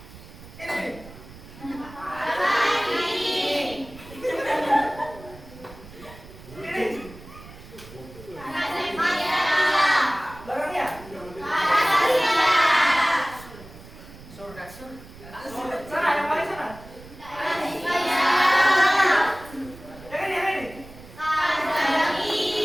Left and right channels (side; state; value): right; noise; rumble, 18 dB below the sound